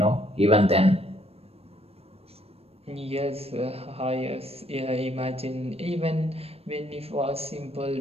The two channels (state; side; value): late; left; 0.29 ms